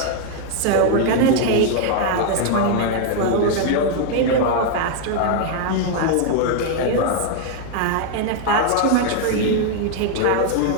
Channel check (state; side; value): different; both; correlation 0.00